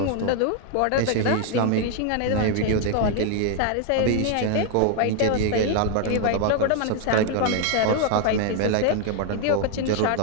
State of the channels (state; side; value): different; both; correlation 0.00